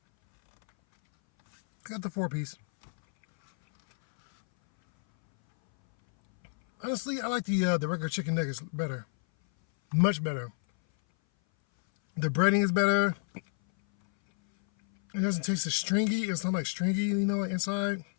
Got the 4-piece. Honestly, I like the regular chicken nuggets better. Much better. The breading is better. It doesn't taste as stringy. It's not like stringy, you know, like inside.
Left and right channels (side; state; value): right; silent; 59 dB below the other